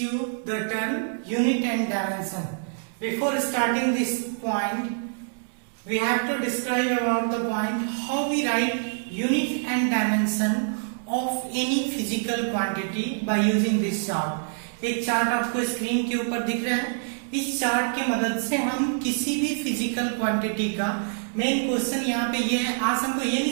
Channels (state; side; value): silent; left; 61 dB below the other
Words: the term unit and dimension. Before starting this point, we have to describe about the point how we write unit and dimension of any physical quantity by using this chart. एक chart आपको screen के ऊपर दिख रहा है. इस chart की मदद से हम किसी भी फिजिकल क्वांटिटी का मेन क्वेश्चन यहाँ पे ये है. आज हमको ये नहीं